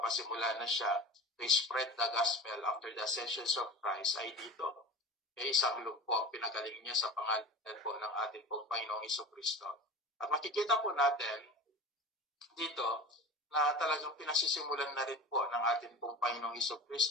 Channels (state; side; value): normal; both; correlation 0.33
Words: na siya to spread the gospel after the ascension of Christ ay dito. Isang lugpo, pinagaling niya sa pangalan po ng ating pong Panginoong Jesucristo. At makikita po natin dito na talagang pinasisimulan na rin po ng ating pong Panginoong